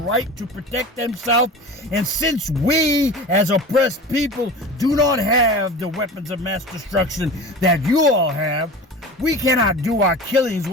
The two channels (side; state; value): both; normal; correlation 0.34